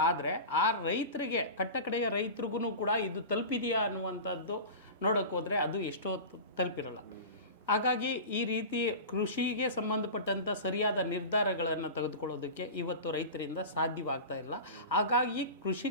ಆದರೆ ಆ ರೈತರಿಗೆ, ಕಟ್ಟಕಡೆಯ ರೈತರಿಗೂ ಕೂಡ ಇದು ತಲುಪಿದೆಯಾ ಅನ್ನುವಂಥದ್ದು ನೋಡೋಕೆ ಹೋದರೆ ಅದು ಎಷ್ಟೋ ತಲುಪಿರಲ್ಲ. ಹಾಗಾಗಿ ಈ ರೀತಿ ಕೃಷಿಗೆ ಸಂಬಂಧಪಟ್ಟಂಥ ಸರಿಯಾದ ನಿರ್ಧಾರಗಳನ್ನು ತೆಗೆದುಕೊಳ್ಳೋದಕ್ಕೆ ಇವತ್ತು ರೈತರಿಂದ ಸಾಧ್ಯವಾಗ್ತಾ ಇಲ್ಲ. ಹಾಗಾಗಿ ಕೃಷಿ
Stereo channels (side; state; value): both; inverted; correlation -0.30